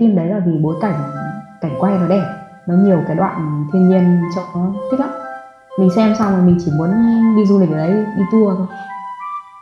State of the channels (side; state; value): both; identical; correlation 1.00